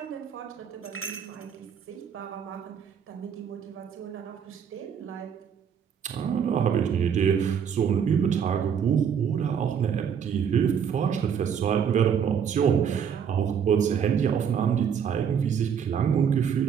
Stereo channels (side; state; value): left; quieter; 7.6 dB